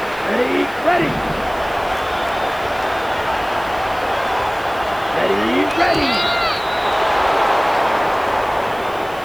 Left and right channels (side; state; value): right; noise; hiss, 23 dB below the sound